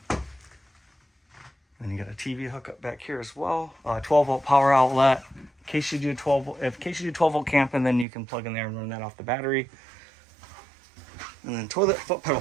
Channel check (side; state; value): left; drops out; at 8.1 s